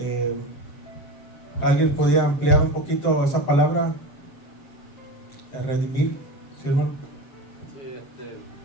¿Alguien podía ampliar un poquito esa palabra? Redimir, ¿sí, hermano? Sí,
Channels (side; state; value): right; late; 7.4 ms